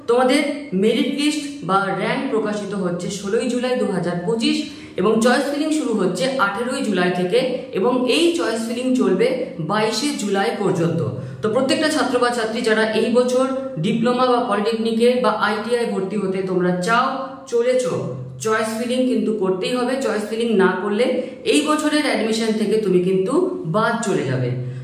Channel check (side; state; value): both; identical; correlation 1.00